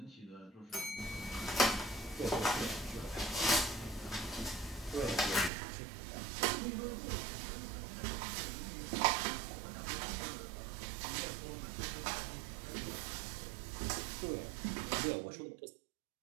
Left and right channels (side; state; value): left; drops out; at 5.5 s